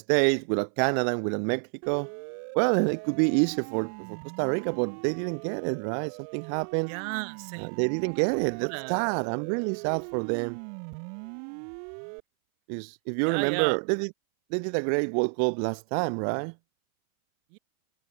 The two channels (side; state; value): left; silent; 59 dB below the other